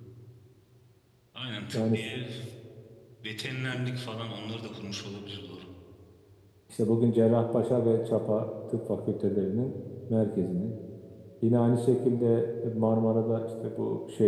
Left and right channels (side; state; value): both; identical; correlation 1.00